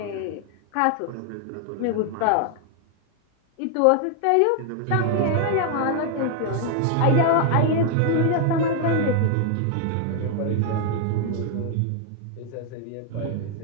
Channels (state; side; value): different; both; correlation 0.00